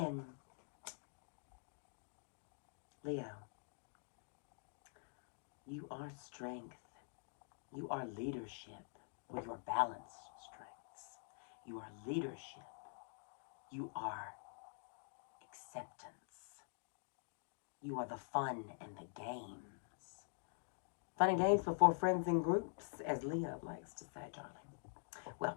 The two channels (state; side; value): silent; right; digital silence